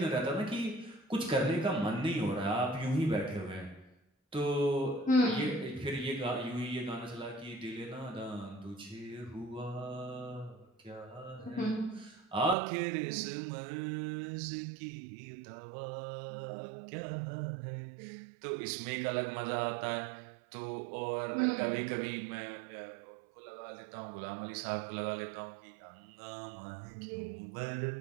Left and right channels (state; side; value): drops out; left; at 12.6 s